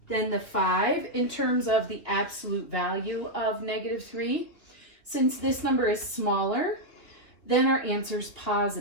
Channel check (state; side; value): late; right; 2.5 ms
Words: than the 5 in terms of the absolute value of -3. Since this number is smaller, then our answer is